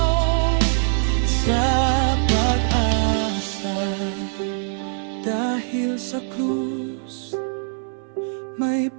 sa krus may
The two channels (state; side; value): silent; left; 61 dB below the other